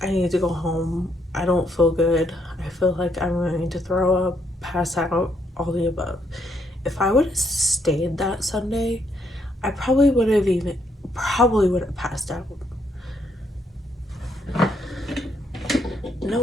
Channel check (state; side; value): normal; both; correlation 0.74